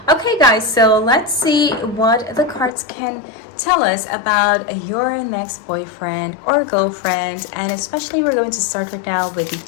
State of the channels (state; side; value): drops out; right; at 2.7 s